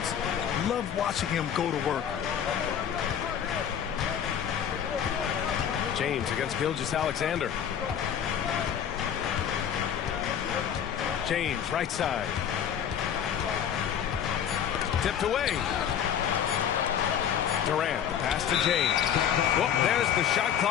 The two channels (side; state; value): right; quieter; 8.9 dB